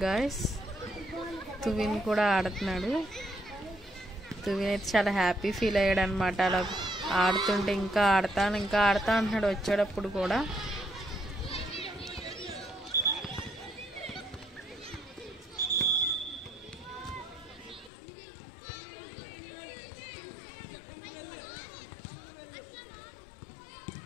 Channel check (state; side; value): drops out; right; at 17.9 s